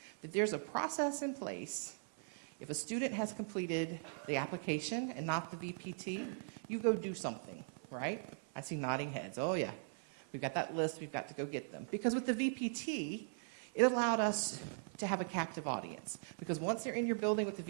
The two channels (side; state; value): left; silent; 51 dB below the other